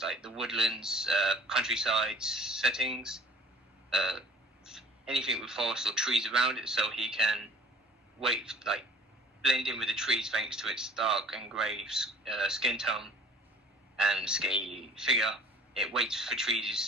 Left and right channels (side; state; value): both; normal; correlation 0.49